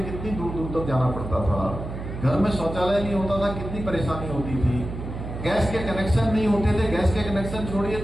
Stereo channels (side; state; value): right; noise; hum, 8 dB below the sound